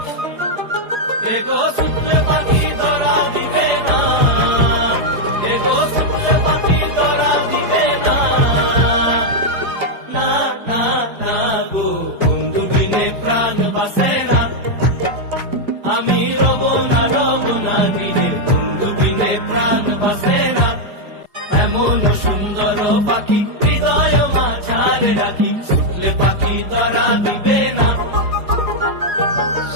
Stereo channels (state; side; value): late; left; 4.8 ms